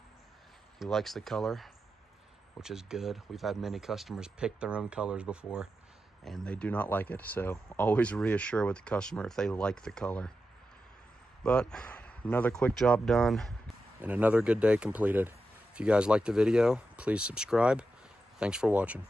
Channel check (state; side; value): normal; both; correlation 0.89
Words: He likes the color, which is good. We've had many customers pick their own colors before, and they do not like it. So always reassure with the customer if they like the color. But another quick job done and another good day completed. If you guys liked the video, please subscribe. Thanks for watching.